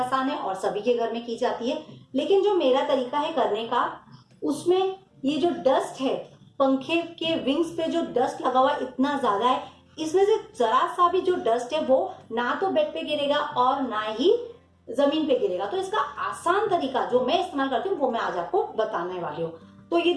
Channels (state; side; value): identical; both; correlation 1.00